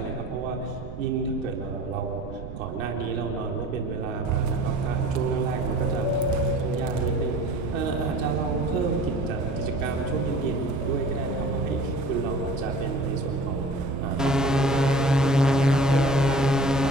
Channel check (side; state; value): right; noise; rumble, 11 dB below the sound